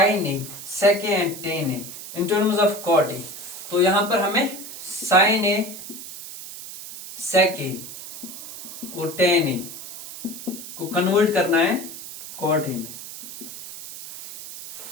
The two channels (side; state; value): right; noise; hiss, 12 dB below the sound